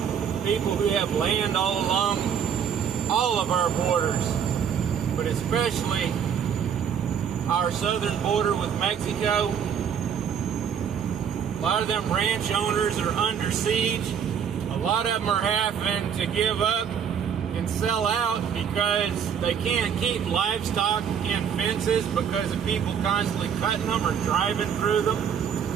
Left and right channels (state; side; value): quieter; left; 7.9 dB